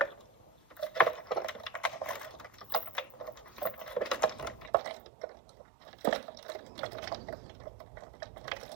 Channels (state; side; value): drops out; left; at 4.7 s